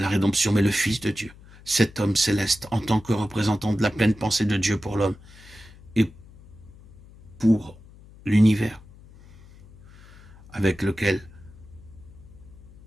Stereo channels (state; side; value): noise; left; hum, 22 dB below the sound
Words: rédemption, mais le Fils de Dieu. Cet homme céleste, en tant que représentant de la pleine pensée de Dieu pour l'homme et pour l'univers avec lequel